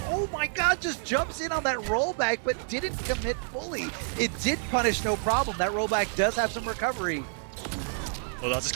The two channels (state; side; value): silent; left; 59 dB below the other